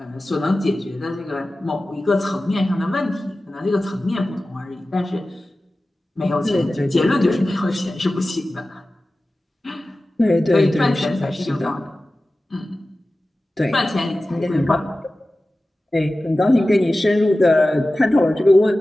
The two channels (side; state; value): both; normal; correlation 0.96